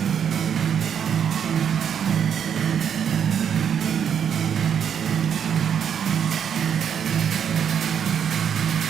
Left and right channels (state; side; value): quieter; left; 8.1 dB